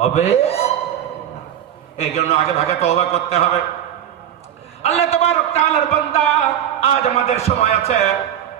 এই জন্য আগে ভাগে তওবা করতে হবে। আল্লাহ তাবারক তাআলার বান্দা, আজ আমাদের সময় আছে,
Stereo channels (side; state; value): left; quieter; 10.5 dB